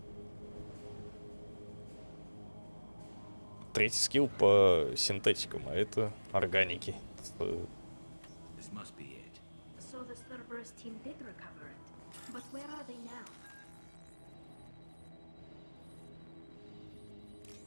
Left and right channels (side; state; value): both; inverted; correlation -1.00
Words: Третий скилл по синтетикам, а это органики. This must be it. So the Cerberus team did recover it. But where are they now?